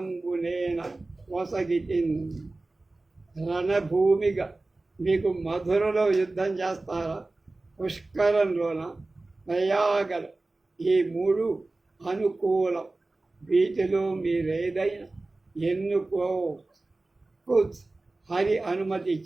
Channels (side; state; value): left; quieter; 3.1 dB